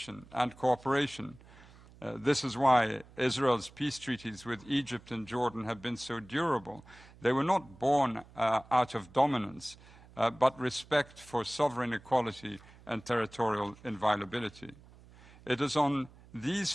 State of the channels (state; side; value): noise; right; hum, 23 dB below the sound